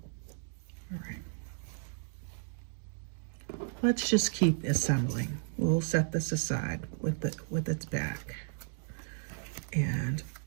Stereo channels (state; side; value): silent; left; digital silence